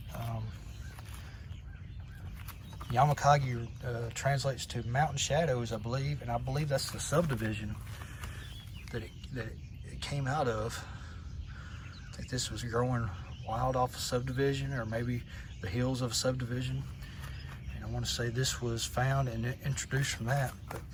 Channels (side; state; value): both; identical; correlation 1.00